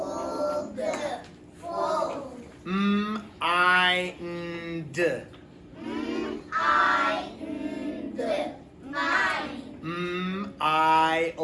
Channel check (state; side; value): identical; both; correlation 1.00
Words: Fold. I, nd. I, nd. Mine. I,